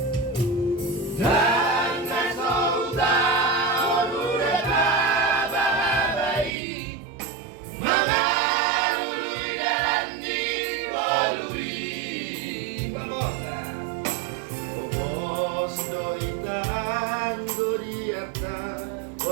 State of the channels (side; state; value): left; drops out; at 6.5 s